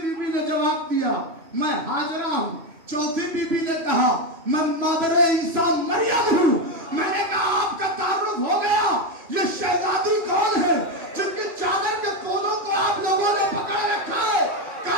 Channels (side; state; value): left; late; 3.0 ms